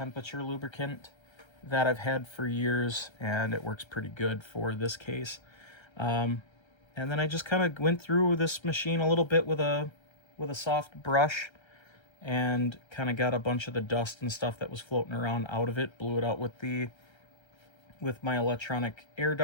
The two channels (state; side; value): late; right; 1.3 ms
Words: lubricant that I've had for years, and it works pretty good for this case. And then I just kind of went through this machine a little bit with a soft brush and kind of got a bunch of the dust and stuff that was floating around out of it, blew it out with my electronic air